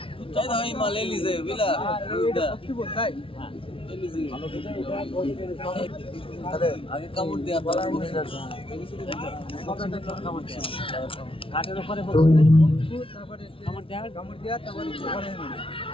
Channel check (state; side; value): late; right; 0.26 ms